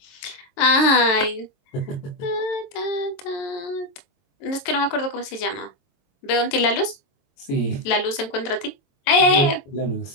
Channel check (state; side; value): late; right; 22 ms